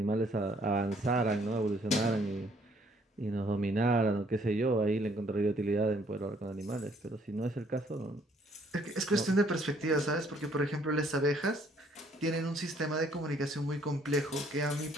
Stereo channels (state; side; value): normal; both; correlation 0.64